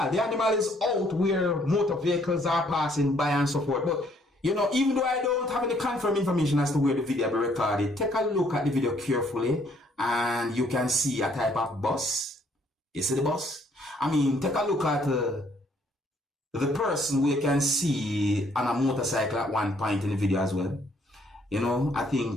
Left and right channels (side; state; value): both; normal; correlation 0.65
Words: The animal is out where motor vehicles are passing by and so forth. But, you know, even though I don't have any confirmed information as to where the video will be recorded, take a look at the video carefully and you can see a type of bus. You see the bus? I mean, take a look at the person we can see on a motorcycle at one point in the video as well. You know, I